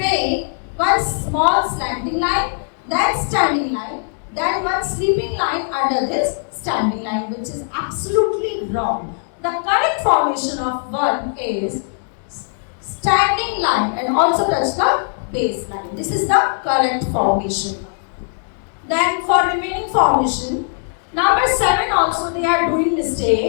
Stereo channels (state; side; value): silent; right; digital silence